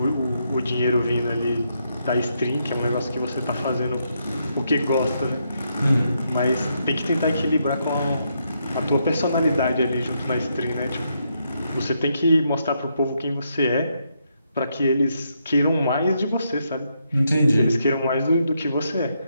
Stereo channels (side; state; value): both; inverted; correlation -0.78